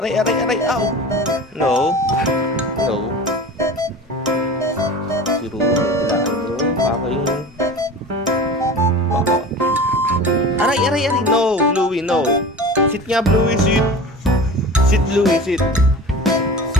aray, aray, ow. No. No. Si Ruro, tilaan mo. Aking... Baka. Aray, aray, aray. No, Bluey, no. Sit nga, Bluey, sit. Sit, Bluey, sit.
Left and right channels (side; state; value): both; normal; correlation 0.36